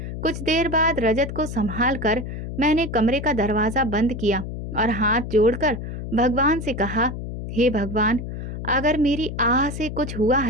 कुछ देर बाद रजत को संभाल कर मैंने कमरे का दरवाजा बंद किया और हाथ जोड़कर भगवान से कहा, हे भगवान, अगर मेरी आह से कुछ हुआ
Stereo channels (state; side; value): noise; left; hum, 7 dB below the sound